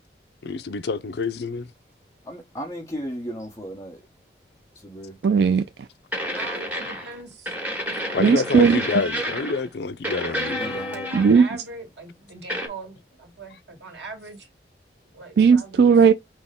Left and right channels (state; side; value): quieter; left; 3.8 dB